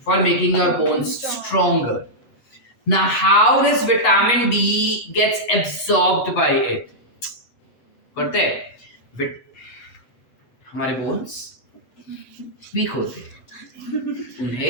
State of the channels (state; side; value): late; right; 8.1 ms